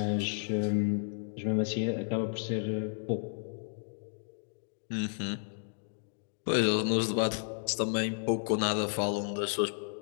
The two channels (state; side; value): silent; right; digital silence